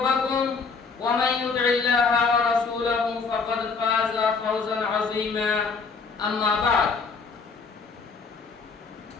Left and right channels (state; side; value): quieter; right; 4.9 dB